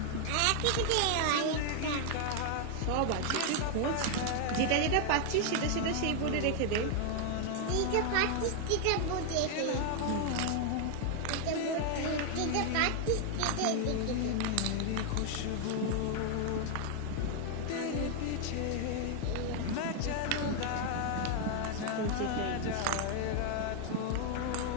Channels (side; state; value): both; different; correlation 0.00